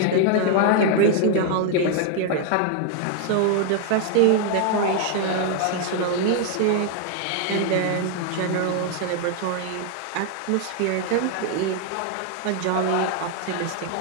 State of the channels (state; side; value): different; both; correlation 0.00